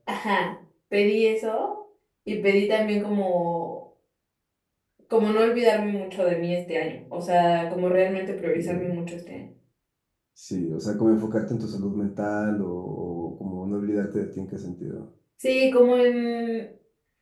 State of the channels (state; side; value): identical; both; correlation 1.00